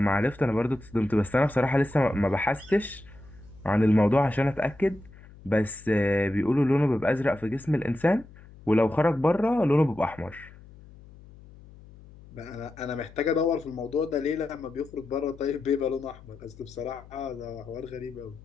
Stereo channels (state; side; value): noise; left; hum, 21 dB below the sound